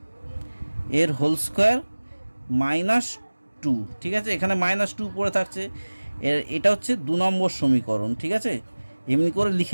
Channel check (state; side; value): inverted; both; correlation -1.00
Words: এর হোল স্কোয়ার মাইনাস 2, ঠিক আছে? এখানে -2 পড়ে থাকছে। এটা হচ্ছে 2 নম্বর সমীকরণ, ঠিক আছে? এমনি করে